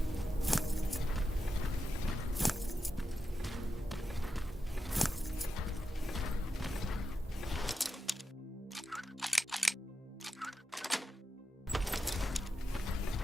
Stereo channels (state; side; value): normal; both; correlation 0.89